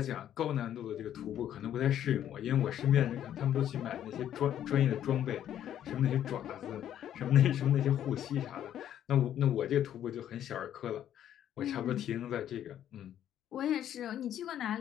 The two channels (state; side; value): quieter; right; 10.7 dB